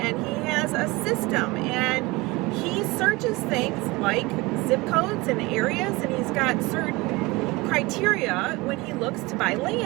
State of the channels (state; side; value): quieter; left; 22.8 dB